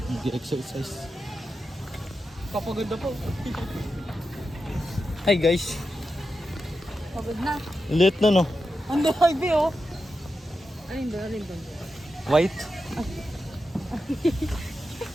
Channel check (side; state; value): both; normal; correlation 0.89